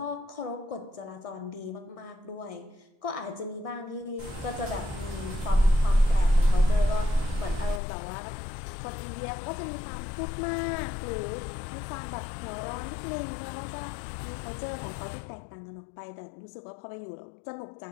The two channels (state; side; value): drops out; right; at 7.8 s